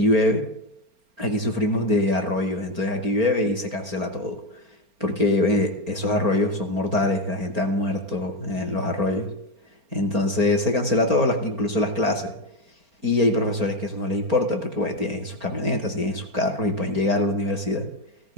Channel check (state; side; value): late; left; 4.4 ms